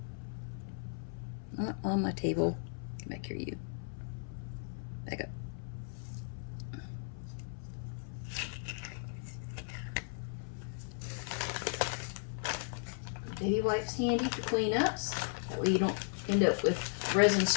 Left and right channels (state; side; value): silent; right; 54 dB below the other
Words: Not on my table. Come back here, you. Back up. Baby wipes handy for cleanups. That way you don't end up with resin